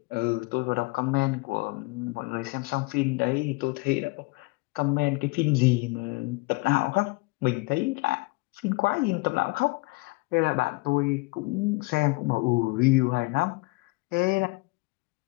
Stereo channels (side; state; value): right; quieter; 25.9 dB